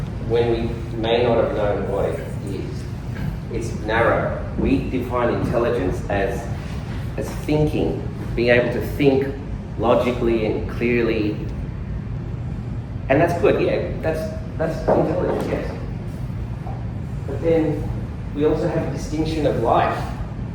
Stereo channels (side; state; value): both; identical; correlation 1.00